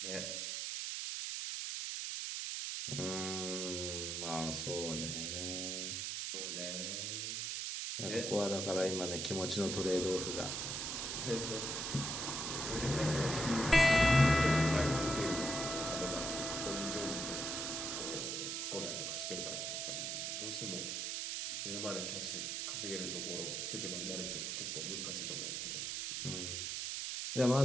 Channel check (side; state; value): right; noise; hiss, 2 dB below the sound